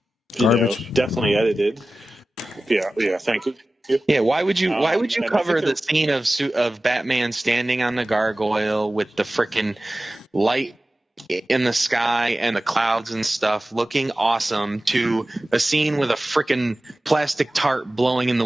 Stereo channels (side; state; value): both; normal; correlation 0.96